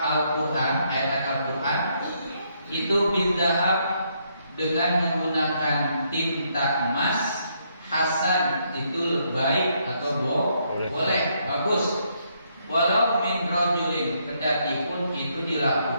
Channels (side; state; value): both; inverted; correlation -0.74